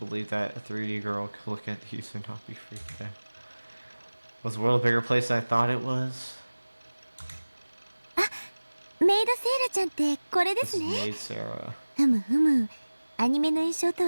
that a 3D girl could look at these and not be freaked out. Was the world a bigger place than I thought it was? メイドセイラちゃんってこれで This す is ね。 Maid Sarah. ふむふむ。アニメの印象と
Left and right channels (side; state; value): both; inverted; correlation -1.00